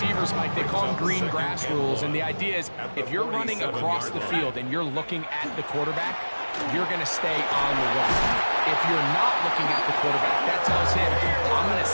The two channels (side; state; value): both; inverted; correlation -1.00